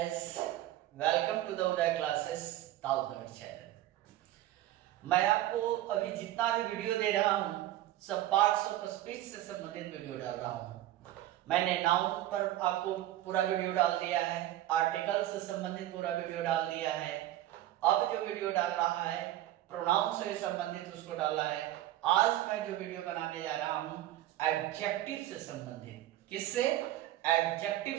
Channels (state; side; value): quieter; left; 14.2 dB